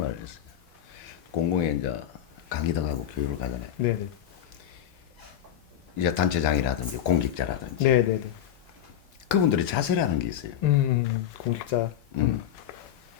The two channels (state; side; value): quieter; right; 10.6 dB